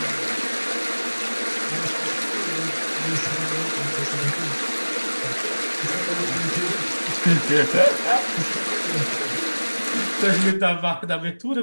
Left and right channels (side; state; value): both; inverted; correlation -1.00